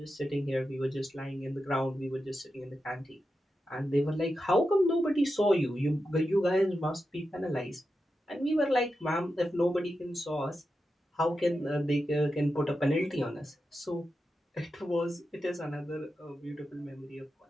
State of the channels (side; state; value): both; normal; correlation 0.89